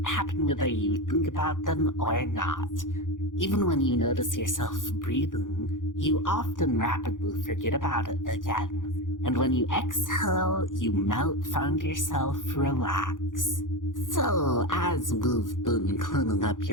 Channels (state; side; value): late; right; 0.88 ms